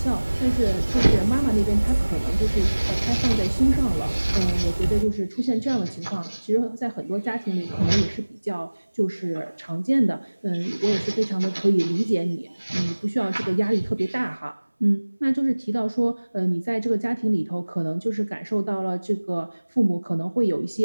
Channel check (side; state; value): both; inverted; correlation -1.00